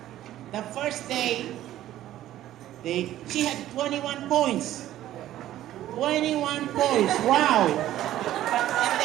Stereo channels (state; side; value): quieter; left; 13.3 dB